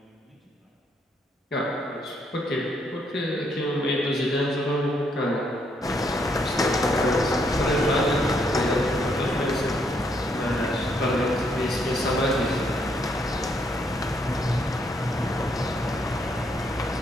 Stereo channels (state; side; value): normal; both; correlation 0.73